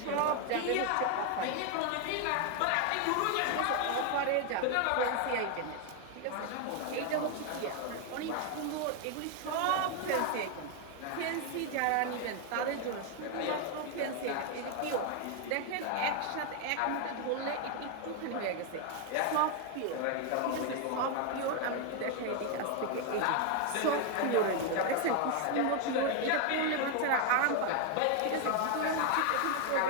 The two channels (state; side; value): different; both; correlation 0.01